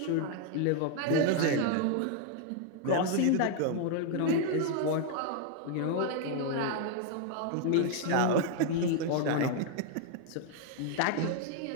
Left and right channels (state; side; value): different; both; correlation 0.00